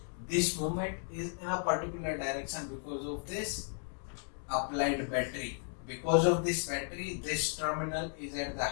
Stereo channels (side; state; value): right; silent; 55 dB below the other